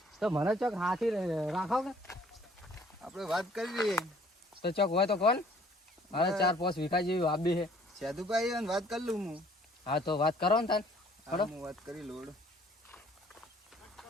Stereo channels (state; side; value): normal; both; correlation 0.58